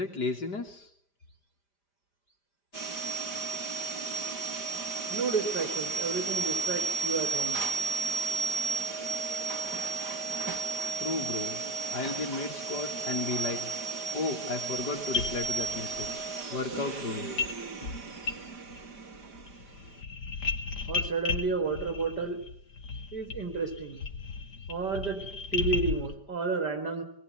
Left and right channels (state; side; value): late; right; 5.0 ms